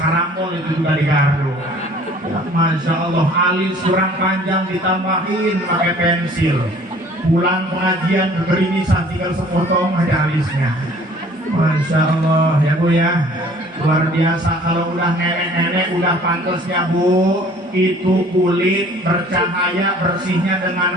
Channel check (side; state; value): both; normal; correlation 0.53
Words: karambol itu juga digaruk. Ya, Masya Allah, alis kurang panjang ditambahin pakai pensil. Pulang pengajian berimisan, tinggal sepotong aja alisnya. Masya Allah ya Bu ya, luar biasa. Kalau udah nenek-nenek udah pantasnya Bu, itu kulit bercahaya bersihnya